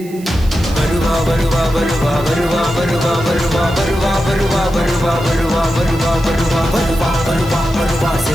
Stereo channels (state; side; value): noise; right; hiss, 21 dB below the sound